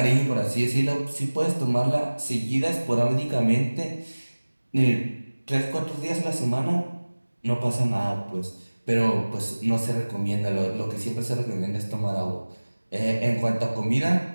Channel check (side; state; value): both; inverted; correlation -1.00